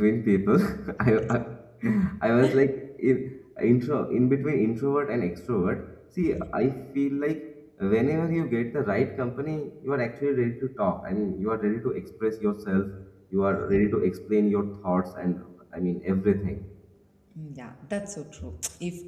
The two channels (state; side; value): identical; both; correlation 1.00